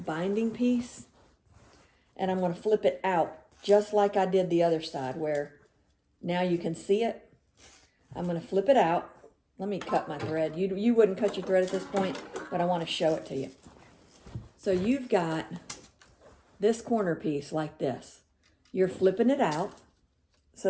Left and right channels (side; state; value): both; identical; correlation 1.00